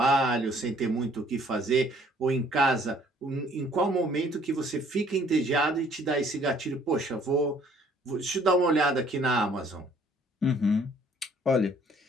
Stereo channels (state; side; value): normal; both; correlation 0.59